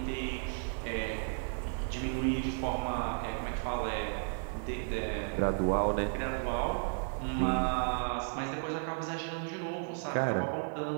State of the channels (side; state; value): left; silent; 55 dB below the other